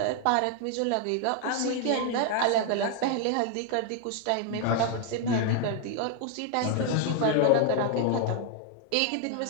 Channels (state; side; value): different; both; correlation 0.01